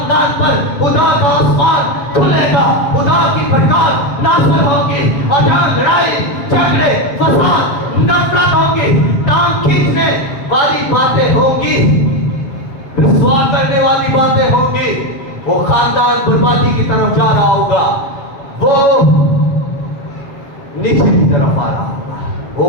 पर खुदा का आसमान खुलेगा। खुदा की प्रकाश नाज़िल होगी, और जहाँ लड़ाई झगड़े फसाद नफरत होगी, टांग खींचने वाली बातें होंगी, रिश्वा करने वाली बातें होंगी, वो खानदान बर्बादी की तरफ जा रहा होगा, वो नीचे की तरफ आ रहा होगा, वो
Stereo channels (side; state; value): right; late; 7.3 ms